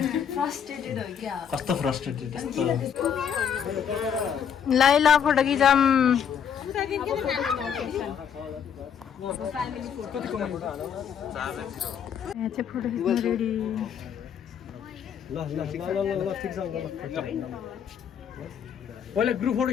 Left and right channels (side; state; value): right; quieter; 8.1 dB